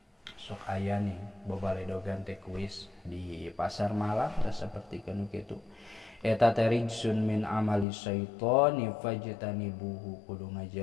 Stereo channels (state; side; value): drops out; right; at 7.9 s